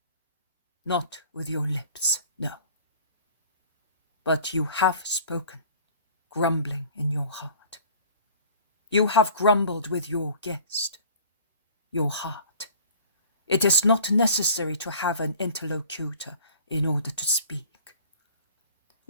"Not with your lips, no. But you have spoken, grumbling in your heart. You have grumbled with your guest, your heart. It is not necessary to have an interlocutor in order to speak.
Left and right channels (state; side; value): inverted; both; correlation -0.47